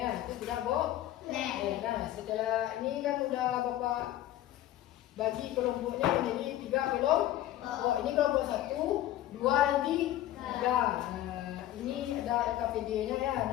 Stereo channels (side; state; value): right; quieter; 13.5 dB